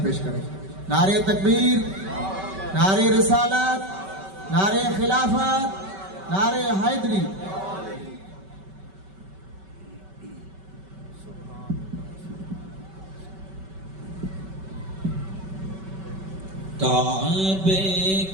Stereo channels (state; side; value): late; left; 5.2 ms